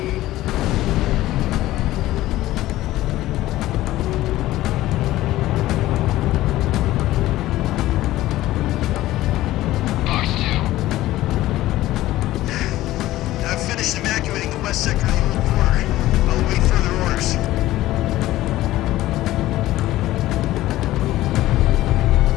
Fox 2. I've finished evacuating the West Sector of the old quarter. I'll await further orders.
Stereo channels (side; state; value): right; quieter; 15.8 dB